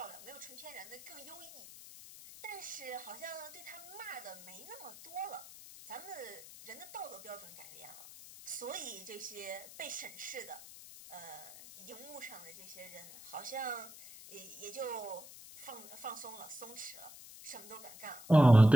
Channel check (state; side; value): noise; left; hiss, 16 dB below the sound